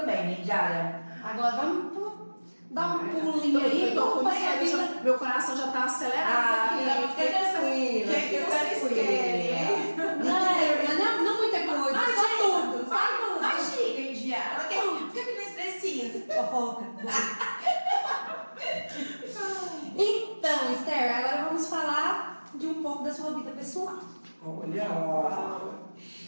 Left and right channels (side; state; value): both; inverted; correlation -1.00